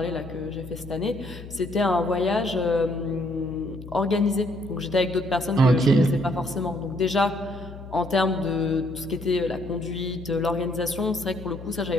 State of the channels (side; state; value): left; noise; hum, 13 dB below the sound